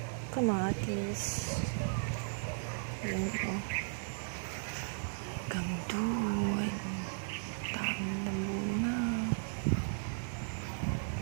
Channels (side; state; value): left; silent; 54 dB below the other